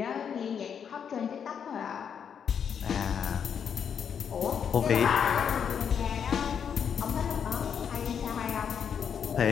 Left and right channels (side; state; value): right; quieter; 7.5 dB